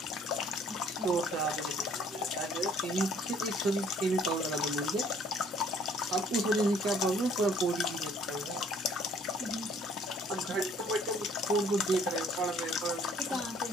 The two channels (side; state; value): both; normal; correlation 0.59